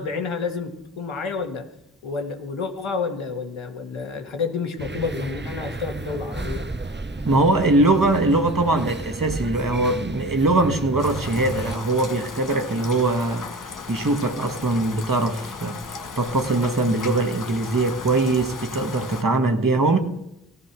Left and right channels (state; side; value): normal; both; correlation 0.36